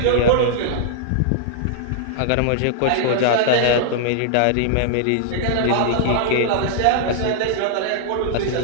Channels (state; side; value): different; both; correlation -0.01